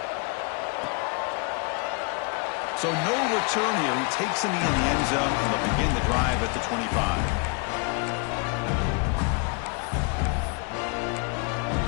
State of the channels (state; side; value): quieter; right; 31.1 dB